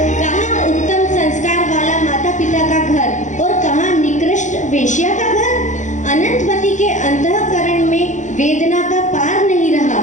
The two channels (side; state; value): right; late; 0.36 ms